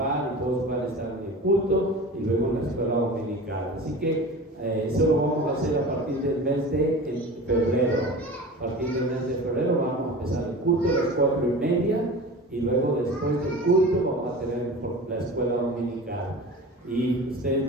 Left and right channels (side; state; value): both; normal; correlation 0.35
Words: y todos puedan estar en el culto y luego en la escuela dominical. Así que eso lo vamos a hacer a partir del mes de febrero. A partir del mes de febrero vamos a empezar el culto a las 4:30 y luego después del culto vamos a tener la escuela dominical. Y ustedes